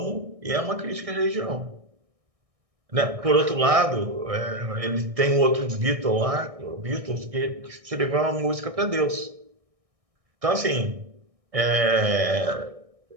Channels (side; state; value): left; late; 1.6 ms